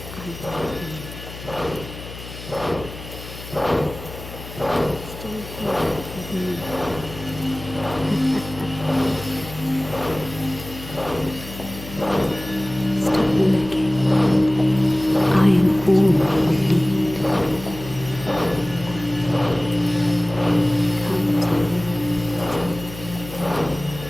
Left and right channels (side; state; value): left; noise; hum, 13 dB below the sound